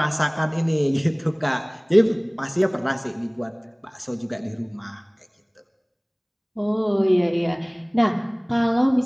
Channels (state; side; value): identical; both; correlation 1.00